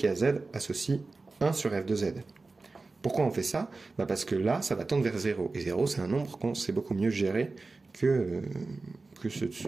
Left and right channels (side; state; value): left; quieter; 3.6 dB